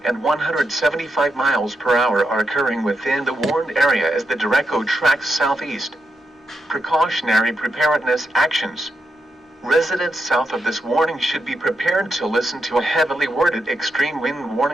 and 175 miles per hour are occurring within the warned area as the derecho tracks southeast. Precautionary preparedness actions. Residents south of this warning should be prepared to listen to a heavily worded extreme wind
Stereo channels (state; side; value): normal; both; correlation 0.84